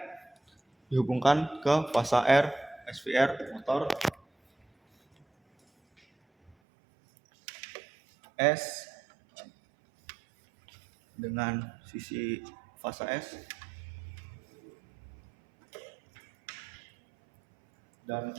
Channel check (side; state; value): left; drops out; at 6.6 s